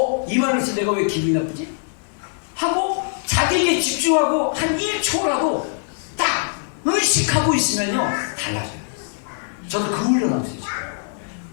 이 말을 해서 내가 왜 기분이 나쁘지? 하고 자기에게 집중하고 한 1초라도 딱 의식하고 있으면요 달라져요. 저도 그 훈련하고 있어요.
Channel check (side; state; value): right; silent; digital silence